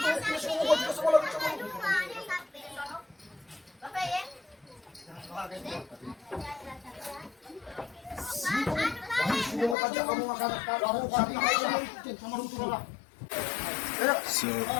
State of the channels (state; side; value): drops out; right; at 9.8 s